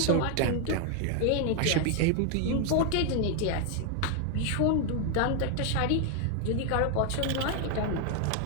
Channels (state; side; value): different; both; correlation 0.00